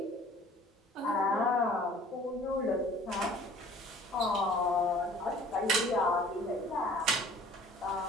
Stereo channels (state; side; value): normal; both; correlation 0.50